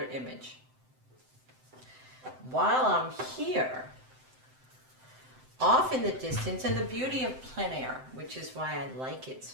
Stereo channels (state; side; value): late; left; 7.8 ms